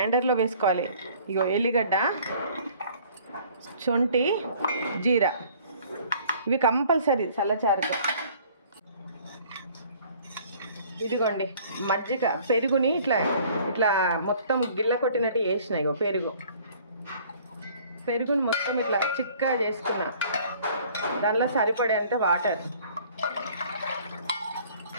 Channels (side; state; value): both; inverted; correlation -0.54